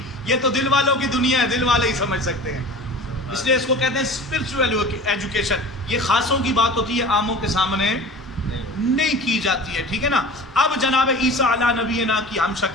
یہ تو دل والوں کی دنیا ہے، دل والے ہی سمجھ سکتے ہیں. اس لیے اس کو کہتے ہیں اسپرچول ایجوکیشن. یہ خاصوں کی بات ہوتی ہے، عاموں کے سامنے نہیں کی جاتی ہے. ٹھیک ہے نا. اب جناب عیسیٰ علیہ نبینا کی ہم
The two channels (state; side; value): normal; both; correlation 0.38